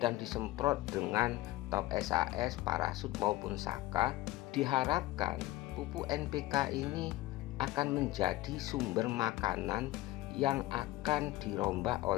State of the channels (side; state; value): right; quieter; 17.2 dB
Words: disemprot dengan top SAS, parasut maupun saka, diharapkan pupuk NPK ini akan menjadi sumber makanan yang akan dirombak